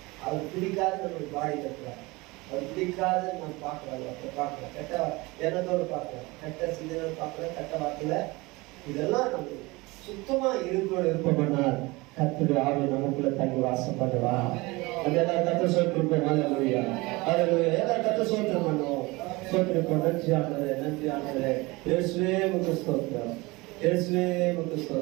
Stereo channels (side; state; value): left; quieter; 23.1 dB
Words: அவர் பிடிக்காது நம்மளுக்கு பாடி கட்டுறாரு. அவர் பிடிக்காது நம்ம பார்க்கலாம், அப்ப பார்க்கலாம், கெட்ட எண்ணத்தோடு பார்க்கலாம், கெட்ட சிந்தனை பார்க்கலாம், கெட்ட வார்த்தையில இதெல்லாம் நம்ம சுத்தமா இருப்போம்னால் கர்த்தருடைய ஆவி நமக்குள்ள தங்கி வாசம் பண்ணுவா. அதெல்லாம் கர்த்தர் சோத்திருப்போம். ஹல்லேலூயா ஹல்லேலூயா. எல்லாம் கர்த்தர் சோத்திரம் பண்ணுவோம். சோத்திருப்போம். நன்றி ஆண்டவரே, நன்றி ஆண்டவரே. இயேசுவே உமக்கு ஸ்தோத்திரம், இயேசுவே உமக்கு